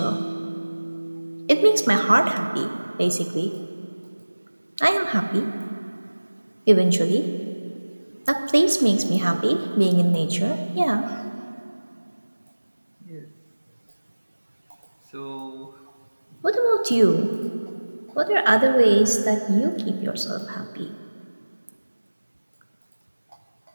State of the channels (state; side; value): inverted; both; correlation -1.00